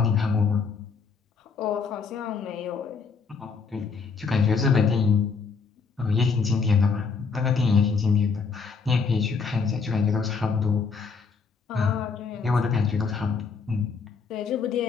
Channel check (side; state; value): right; quieter; 5.2 dB